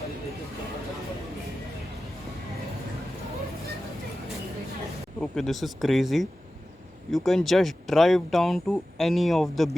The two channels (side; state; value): both; normal; correlation 0.94